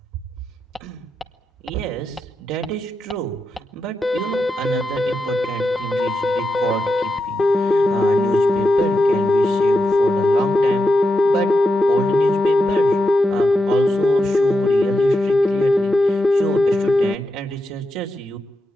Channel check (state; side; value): normal; both; correlation 0.87